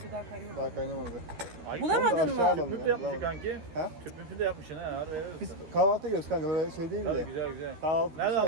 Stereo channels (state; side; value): late; left; 13 ms